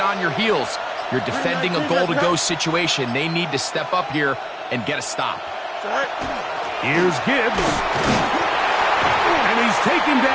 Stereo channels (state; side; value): identical; both; correlation 1.00